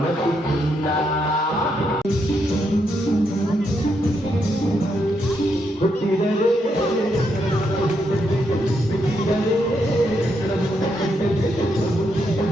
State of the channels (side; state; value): both; normal; correlation 0.79